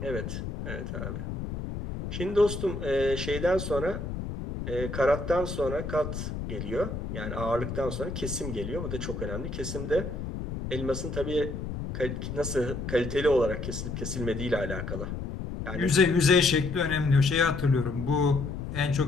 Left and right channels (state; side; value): noise; left; rumble, 6 dB below the sound